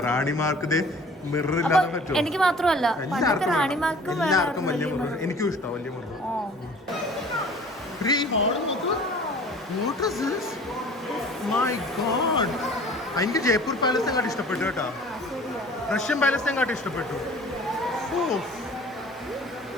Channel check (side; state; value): both; normal; correlation 0.47